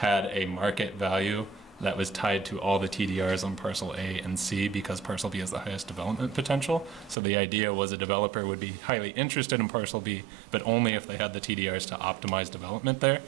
a market value that was tied to all the TDRs on parcel A and C because parcel B has the highest development potential. So the idea was a developer would be highly interested in parcel B, but only if they had the TDRs to optimize development there.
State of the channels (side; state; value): left; drops out; at 7.2 s